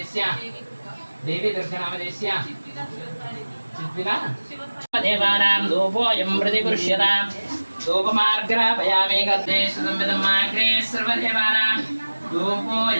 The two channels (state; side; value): inverted; both; correlation -1.00